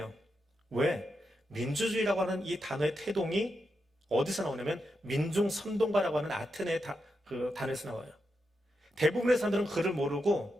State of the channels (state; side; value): normal; both; correlation 0.86